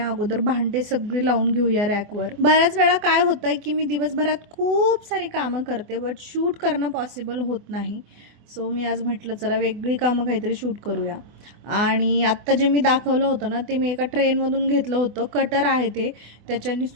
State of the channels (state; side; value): late; left; 24 ms